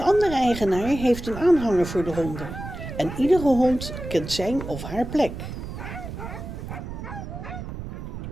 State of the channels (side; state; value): right; noise; rumble, 9 dB below the sound